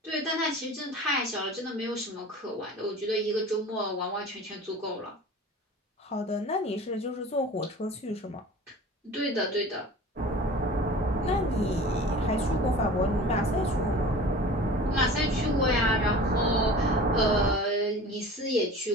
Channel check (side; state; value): both; normal; correlation 0.39